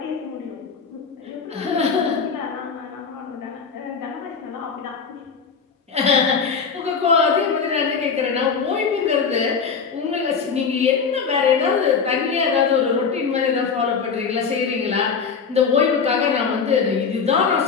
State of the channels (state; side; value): quieter; right; 5.8 dB